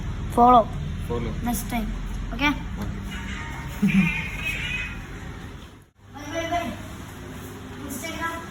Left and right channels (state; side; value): identical; both; correlation 1.00